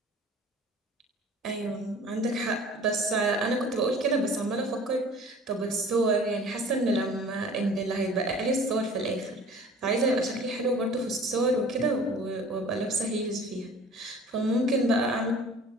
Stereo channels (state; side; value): normal; both; correlation 0.46